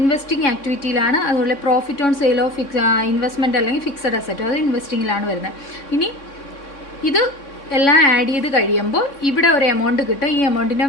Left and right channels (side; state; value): right; late; 3.6 ms